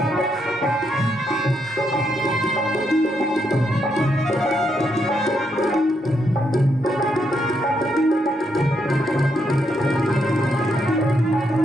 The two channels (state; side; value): normal; both; correlation 0.78